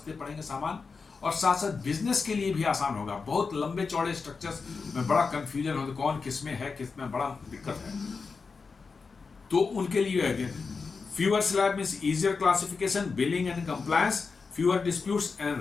पड़ेंगे सामान, और साथ साथ बिजनेस के लिए भी आसान होगा। बहुत लंबे चौड़े स्ट्रक्चर्स में बड़ा कंफ्यूजन होता है, कौन किस में है, किस में बड़ा दिक्कत है, तो उनके लिए है। Fewer slab means easier classification, billing and compliance, fewer disputes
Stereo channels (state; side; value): quieter; right; 4.8 dB